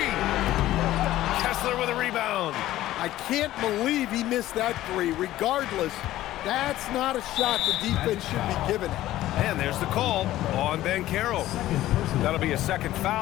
Kessler with a rebound. I can't believe he missed that three. Regardless, that's not a shot the defense should be giving it. And there's the call on Banchero. That'll be a second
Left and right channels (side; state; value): right; quieter; 14.8 dB